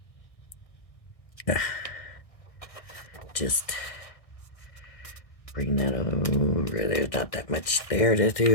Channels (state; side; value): late; right; 1.6 ms